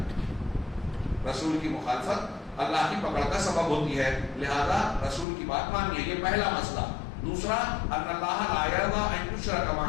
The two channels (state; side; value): drops out; right; at 5.2 s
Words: رسول کی مخالفت اللہ کی پکڑ کا سبب ہوتی ہے، لہذا رسول کی بات ماننی ہے، یہ پہلا مسئلہ۔ دوسرا ان اللہ لا یرضی ان یشرک